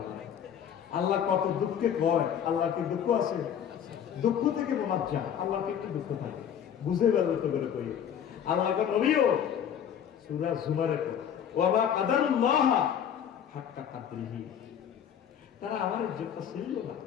আল্লাহ কত দুঃখে কয়। আল্লাহ কি দুঃখ আছে? দুঃখ থেকে মোনাজ্জা, আল্লাহকে একটু দুঃখ থাকে বুঝে বেরোতে করে কই। আল্লাহকে নবীও সূরা জুমারে ওয়া কাদারুল্লাহ হাক্কা কাদরিহি, তারা আমার ইজ্জতটা ছিল না।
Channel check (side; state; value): right; quieter; 8.8 dB